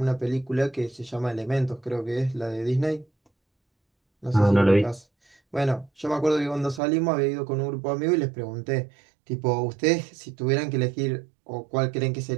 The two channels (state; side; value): drops out; left; at 6.8 s